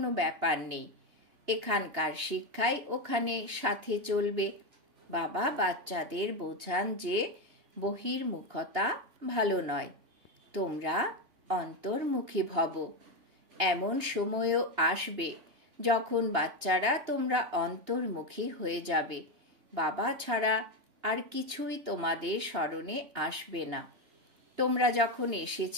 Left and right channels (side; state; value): left; late; 2.9 ms